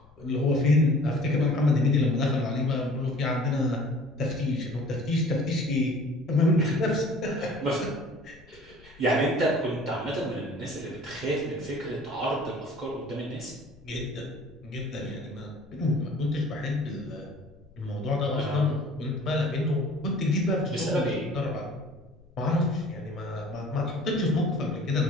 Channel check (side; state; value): left; noise; rumble, 26 dB below the sound